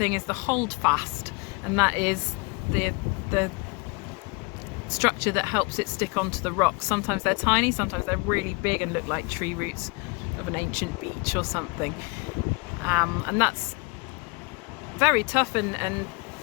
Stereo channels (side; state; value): right; quieter; 29.5 dB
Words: is the holdfast, and that is the structure that helps it stick onto the rocks. Sometimes they're tiny, sometimes they're really big and look like tree roots of an ancient beach or something, and that's very tough, and